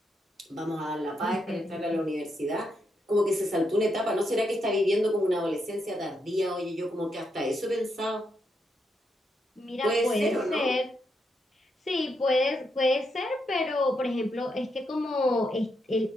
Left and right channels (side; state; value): both; normal; correlation 0.81